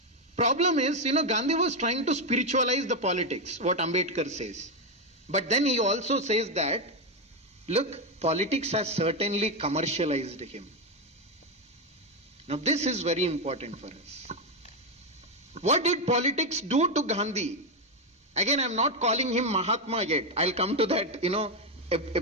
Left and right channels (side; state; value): both; normal; correlation 0.06